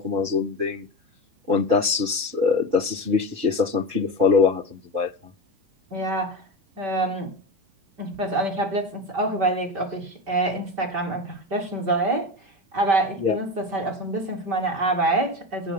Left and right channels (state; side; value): late; left; 5.1 ms